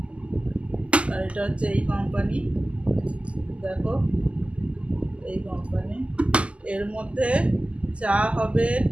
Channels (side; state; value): left; late; 0.057 ms